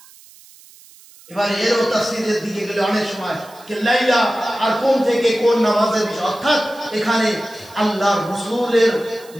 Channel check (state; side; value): noise; right; hiss, 24 dB below the sound